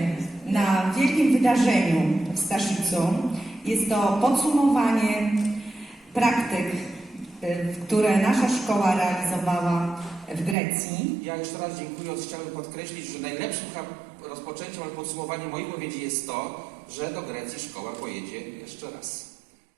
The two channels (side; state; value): left; drops out; at 10.6 s